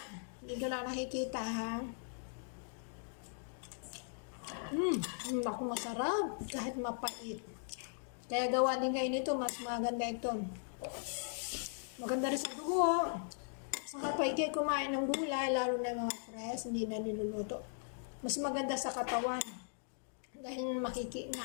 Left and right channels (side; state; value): right; silent; digital silence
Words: Hindi ka lang nakikita, ha? Naku, masarap. Kahit mapait. Kaya gawa din kayo nito, mas maganda ito. Maganda rin sa dugo. Saka pa ikay kumain ng gulay, lalo na mga fresh, hindi na niluluto. Mas maganda sa katawan. Dahil